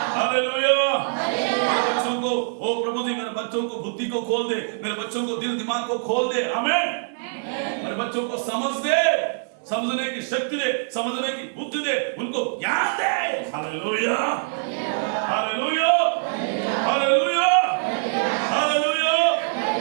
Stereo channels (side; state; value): left; silent; digital silence